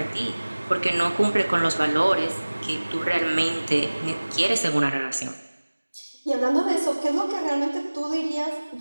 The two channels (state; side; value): inverted; both; correlation -1.00